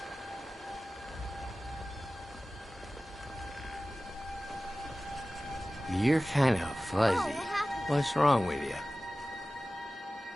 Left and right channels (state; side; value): normal; both; correlation 0.96